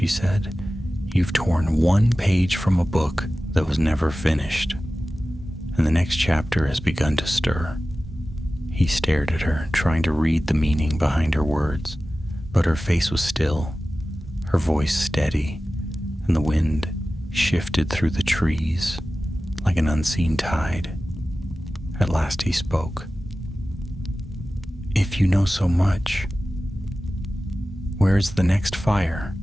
said. "You've torn one page from a book that was never finished, and the next chapter has begun to stir." He stared at her, trying to read the meaning behind her words, but her face was still, her voice steady, and the wind shifted through the trees like an unseen tide. At last he spoke. "If you know so much, where is the next fire?"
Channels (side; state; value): both; normal; correlation 0.95